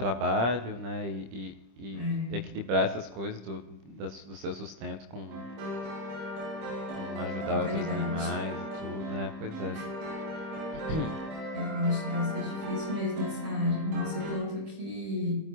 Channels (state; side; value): late; left; 25 ms